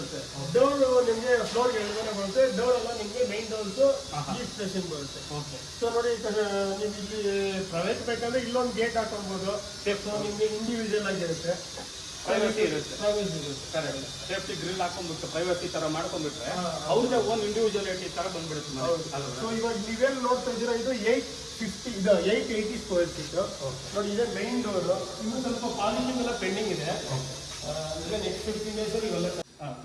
ಡೋರ್ ನಿಮಗೆ ಫ್ಲೋರ್ ಎಳ್ಗಡೆ ಬರುತ್ತೆ. ಡೋರ್ ಎಲ್ಲ ನಿಮಗೆ ಮೈನ್ ಡೋರ್ಸ್ ಈಸ್ಟ್ ಫೇಸಿಂಗ್ ಬರುತ್ತೆ. ಓಕೆ. ಸೊ ನೋಡಿ, ನೀವು ಇಲ್ಲಿ ಪ್ರೈವೇಟ್ ಬೇಕಂದ್ರೆ ಇಲ್ಲೊಂದು ಗೇಟ್ ಹಾಕೊಳ್ಬೋದು. ಸೊ ನಿಮಗೆ ಇಂಡಿವಿಜುವಲ್ ಆಗಿರುತ್ತೆ, ಪ್ರೈವಸಿ ಇರುತ್ತೆ. ಪ್ರೈವೇಸಿ ಇರುತ್ತೆ. ಕರೆಕ್ಟ್. ಸೇಫ್ಟಿ ಗ್ರಿಲ್ ಹಾಕೊಂಡ್ಬಿಟ್ಟು ಪ್ರೈವಸಿ ತರ ಮಾಡ್ಕೊಂಡ್ಬಿಟ್ರೆ ಅವ್ರದ್ದೇ ಓನ್ ಇಂಡಿವಿಜುವಾಲಿಟಿ ತರ ಬಂದ್ಬಿಡುತ್ತೆ ಮನೆ. ಸೊ ಇವಾಗ ನೀವೇನು ನೋಡ್ತಾ ಇದ್ದೀರಾ, ಇದು 880 ಸ್ಕ್ವೇರ್ ಫೀಟ್. ನೋಡಿ, ಇದೆ ಮೈನ್ ಡೋರ್. ಇನ್ನು ಸ್ವಲ್ಪ ಪಾಲಿಶಿಂಗ್ ಎಲ್ಲ ಪೆಂಡಿಂಗ್ ಇದೆ. ನೆಕ್ಸ್ಟ್ 15 days ಅಲ್ಲಿ ಇವೆಲ್ಲ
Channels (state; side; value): identical; both; correlation 1.00